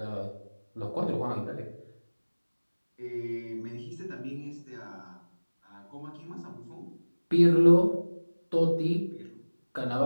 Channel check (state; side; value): inverted; both; correlation -1.00